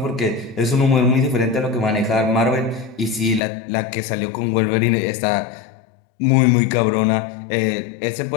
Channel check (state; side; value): drops out; right; at 3.4 s